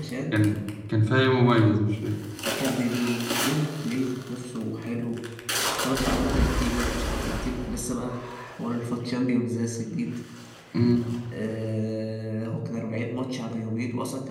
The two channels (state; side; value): identical; both; correlation 1.00